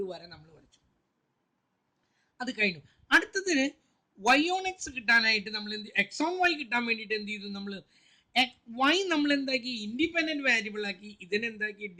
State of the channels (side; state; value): both; identical; correlation 1.00